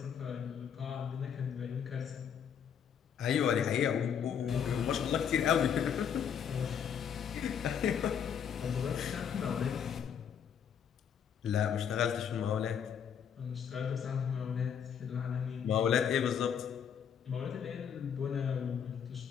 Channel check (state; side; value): quieter; right; 8.0 dB